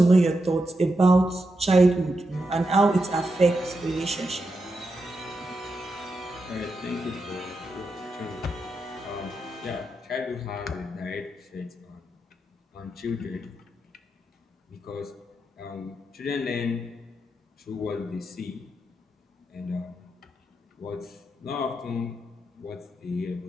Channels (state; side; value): normal; both; correlation 0.86